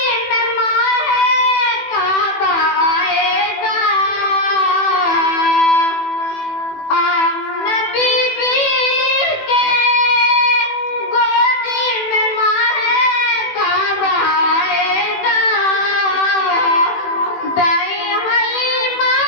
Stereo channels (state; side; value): late; right; 18 ms